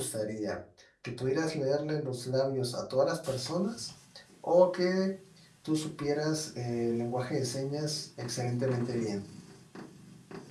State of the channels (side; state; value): both; identical; correlation 1.00